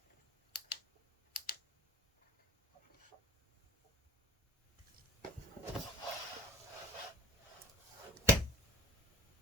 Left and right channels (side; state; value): both; normal; correlation 0.43